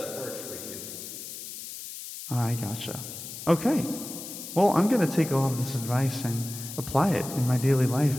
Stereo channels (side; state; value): left; noise; hiss, 10 dB below the sound